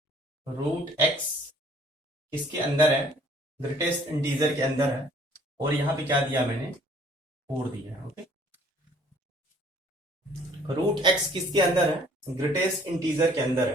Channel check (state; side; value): normal; both; correlation 0.57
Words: √x किसके अंदर है, ग्रेटेस्ट इंटीजर के अंदर है, और यहाँ पे क्या दिया मैंने, 4 दिया है। ओके, रूट एक्स किसके अंदर है? ग्रेटेस्ट इंटीजर के अंदर